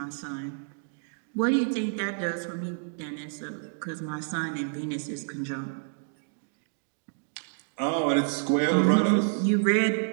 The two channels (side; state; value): left; silent; digital silence